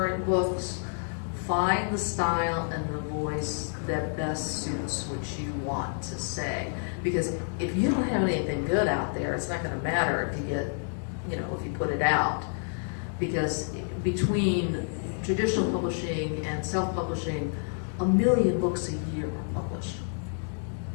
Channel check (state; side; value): silent; right; 57 dB below the other